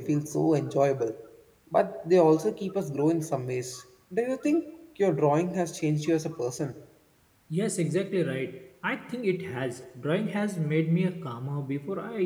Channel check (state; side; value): identical; both; correlation 1.00